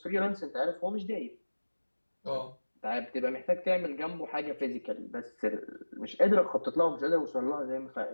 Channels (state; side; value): inverted; both; correlation -1.00